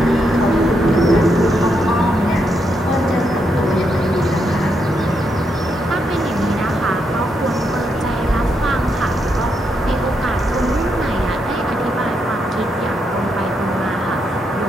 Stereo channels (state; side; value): normal; both; correlation 0.80